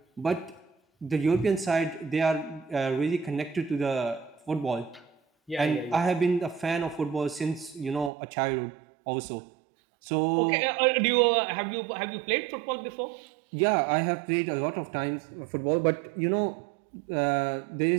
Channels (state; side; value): drops out; left; at 8.1 s